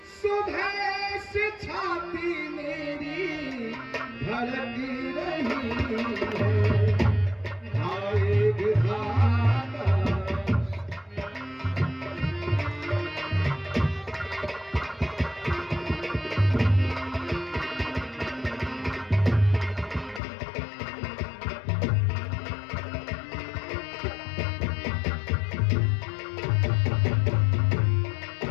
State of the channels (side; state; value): right; drops out; at 20.2 s